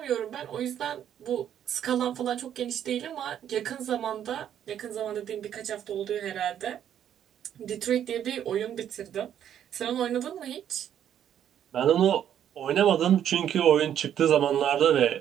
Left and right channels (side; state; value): left; quieter; 10.0 dB